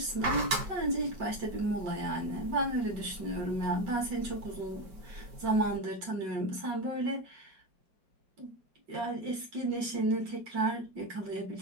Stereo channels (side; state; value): left; late; 5.1 ms